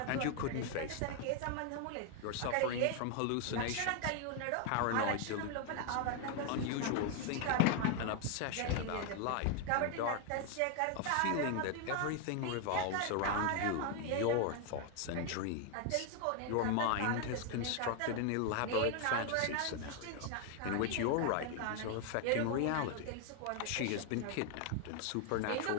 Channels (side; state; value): both; different; correlation 0.00